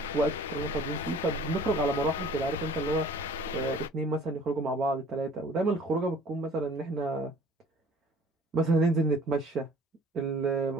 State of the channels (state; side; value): normal; both; correlation 0.51